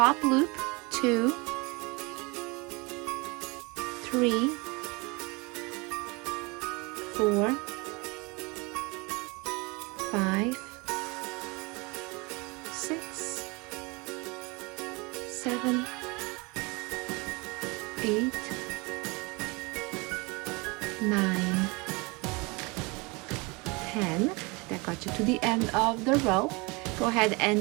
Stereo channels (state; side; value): quieter; left; 27.4 dB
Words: loop, 2, 3, 4, 5, 6, 7, 8, 9, 10. That got you to the end of the row. Go ahead